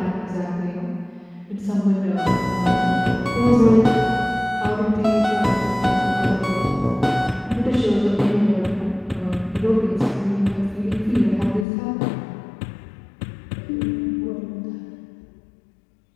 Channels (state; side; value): drops out; right; at 11.7 s